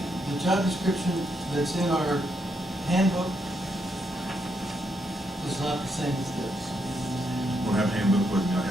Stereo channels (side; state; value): both; normal; correlation 0.78